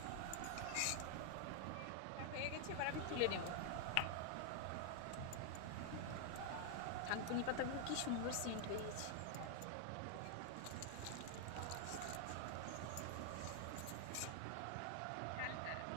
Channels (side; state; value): both; different; correlation 0.00